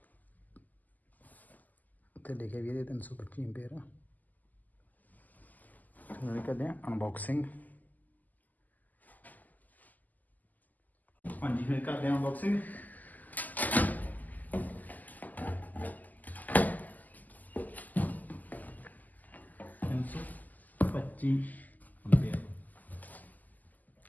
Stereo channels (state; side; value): late; right; 0.082 ms